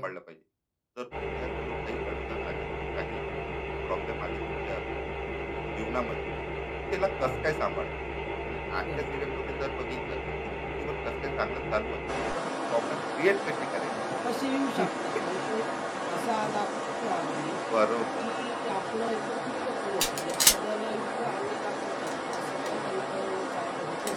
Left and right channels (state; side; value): identical; both; correlation 1.00